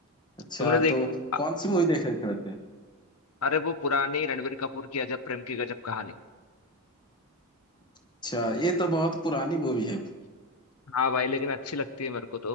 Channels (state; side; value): normal; both; correlation 0.13